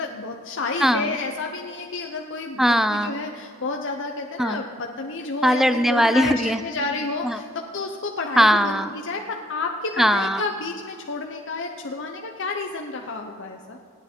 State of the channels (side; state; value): both; normal; correlation 0.67